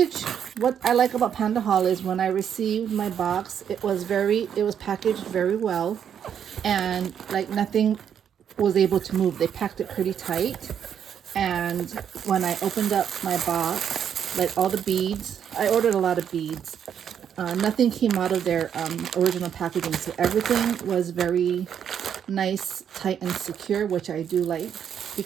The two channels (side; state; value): left; quieter; 8.5 dB